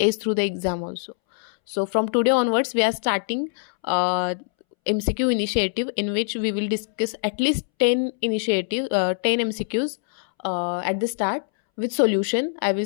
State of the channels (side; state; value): right; silent; 63 dB below the other